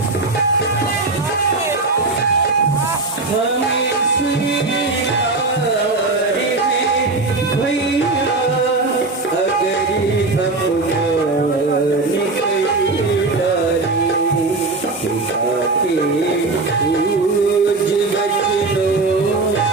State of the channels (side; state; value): left; quieter; 3.5 dB